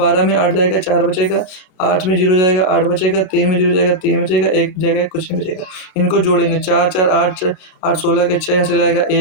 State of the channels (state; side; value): late; right; 32 ms